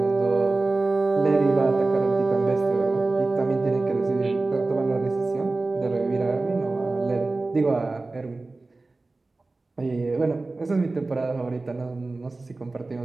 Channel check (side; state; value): left; quieter; 3.3 dB